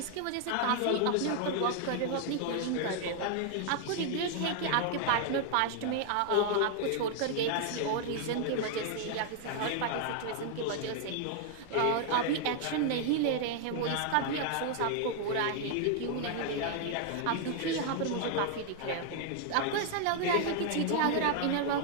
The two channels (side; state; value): both; different; correlation 0.00